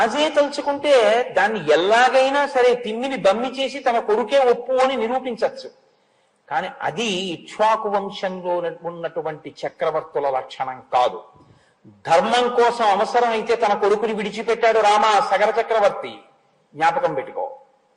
తలుచుకుంటే దాన్ని ఎలాగైనా సరే తిమ్మిని బమ్మి చేసి తన కొడుకే ఒప్పు అని నిరూపించవచ్చు. కానీ అది ఇక్ష్వాకు వంశంలో ఉన్నటువంటి చక్రవర్తుల లక్షణం కాదు. ధర్మం కోసం అవసరం అయితే తన కొడుకుని విడిచిపెట్టాడు రామ సగర చక్రవర్తి. జ్ఞాపకం పెట్టుకో.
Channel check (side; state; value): both; identical; correlation 1.00